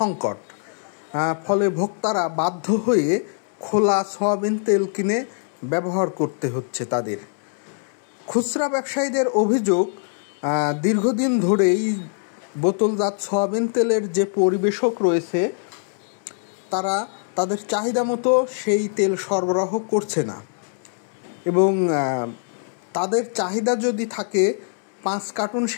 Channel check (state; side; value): silent; right; digital silence